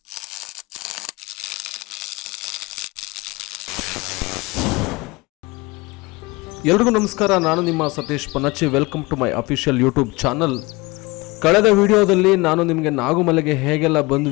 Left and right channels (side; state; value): right; quieter; 23.7 dB